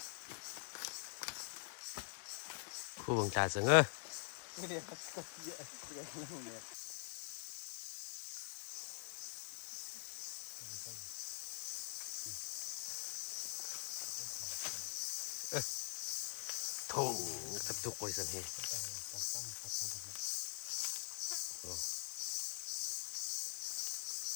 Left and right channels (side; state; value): right; silent; digital silence